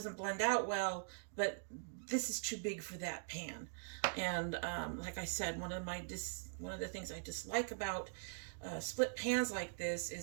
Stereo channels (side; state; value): left; silent; digital silence